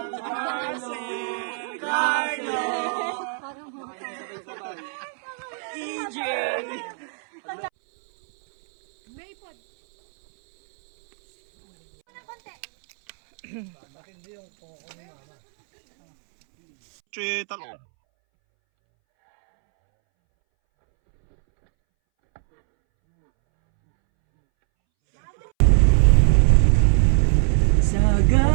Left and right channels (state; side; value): silent; left; 64 dB below the other